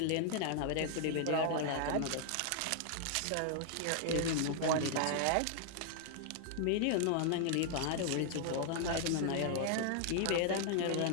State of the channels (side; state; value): both; different; correlation 0.00